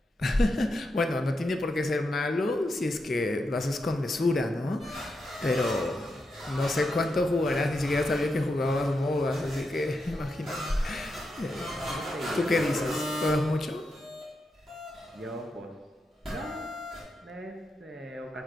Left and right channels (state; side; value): normal; both; correlation 0.85